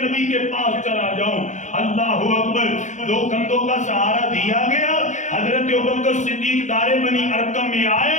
کے پاس چلا جاؤں۔ اللہ اکبر، دو کندھوں کا سہارا دیا گیا، حضرت ابوبکر صدیق دار بنی ارقم میں آئے،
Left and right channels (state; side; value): late; right; 0.35 ms